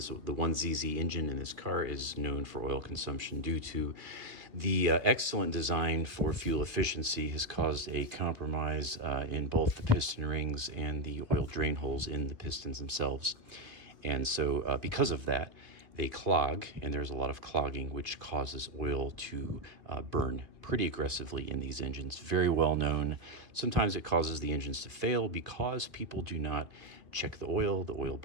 engine in this car is known for oil consumption due to the excellent design for fuel efficiency has caused a compromise in both the piston rings and the oil drain holes in the pistons themselves. And so because of that, they clog, and there's a lot of clogging, which causes oil to burn pretty aggressively in these engines. Very well known. Sometimes it causes the engines to fail because people do not check the oil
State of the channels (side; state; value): left; late; 2.5 ms